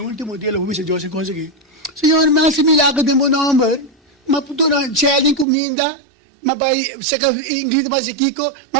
dia, lo pupisa Deus e consegui. Senhor, mas se milagre de meu nome, mas puto na challenge comida, mas vai se ingrediente mas kiko,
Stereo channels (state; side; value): drops out; left; at 5.5 s